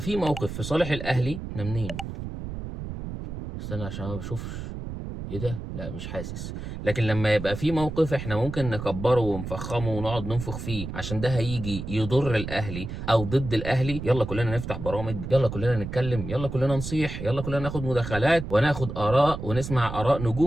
موقف في صالح الاهلي. احنا منين؟ استنى عشان ما بشوفش. ايه ده؟ لا مش حاسس. لكن لما يبقى في موقف احنا ممكن نكبره ونفخمه ونقعد ننفخ فيه عشان ده هيجي يضر الاهلي او ضد الاهلي، يلا كلنا نفتح برامج، يلا كلنا نتكلم، يلا كلنا نصيح، يلا كلنا ناخد مداخلات وناخد اراء ونسمع اراء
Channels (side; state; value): right; noise; rumble, 7 dB below the sound